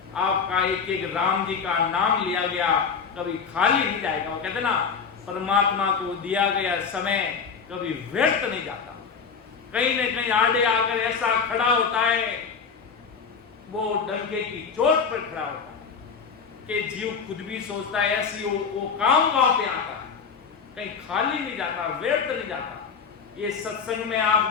आपका एक एक राम जी का नाम लिया गया कभी खाली नहीं जाएगा। वो कहते ना, परमात्मा को दिया गया समय कभी व्यर्थ नहीं जाता। कहीं न कहीं आड़े आकर ऐसा खड़ा होता है, वो डंके की चोट पर खड़ा होता है कि जीव खुद भी सोचता है ऐसी वो काम वहां पे आता है, कहीं खाली नहीं जाता, व्यर्थ नहीं जाता। ये सत्संग में आप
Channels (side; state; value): right; quieter; 5.9 dB